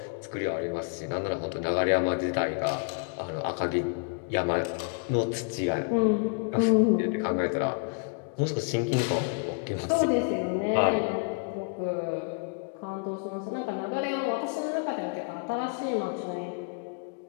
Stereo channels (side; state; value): right; quieter; 37.8 dB